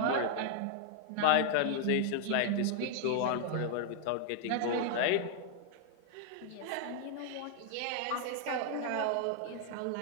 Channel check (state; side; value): different; both; correlation 0.00